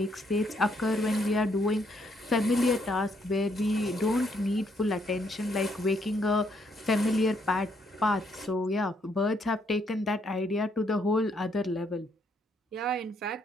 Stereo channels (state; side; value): normal; both; correlation 0.72